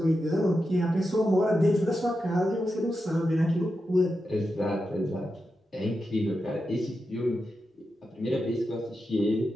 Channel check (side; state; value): both; normal; correlation 0.89